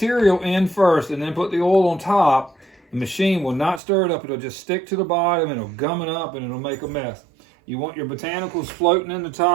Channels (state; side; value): drops out; left; at 3.8 s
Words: in first and then put the oil on top, the machine will not stir it up. It'll just stick to the bottom and it'll gum it up and it'll make a mess. You want your botanicals floating in the